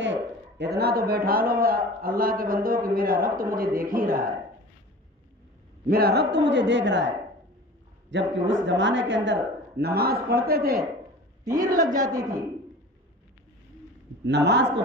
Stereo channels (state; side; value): normal; both; correlation 0.39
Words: اتنا تو بیٹھا لو اللہ کے بندوں کہ میرا رب تو مجھے دیکھ ہی رہا ہے، میرا رب تو مجھے دیکھ رہا ہے۔ جبکہ اس زمانے کے اندر نماز پڑھتے تھے، تیر لگ جاتی تھی، نماز